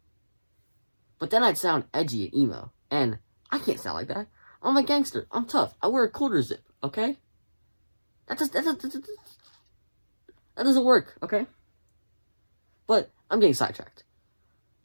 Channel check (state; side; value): inverted; both; correlation -1.00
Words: But then I'd sound edgy and emo, and I can't sound like that. I'm a gangster. I'm tough. I wear a quarter zip. Okay, that doesn't work. Okay, but I'm getting sidetracked.